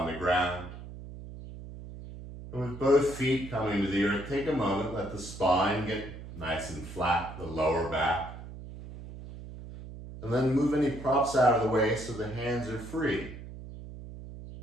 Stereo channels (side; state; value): right; noise; hum, 13 dB below the sound